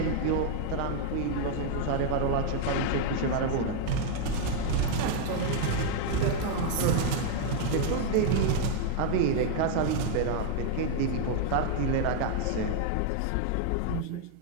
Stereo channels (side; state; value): both; different; correlation 0.00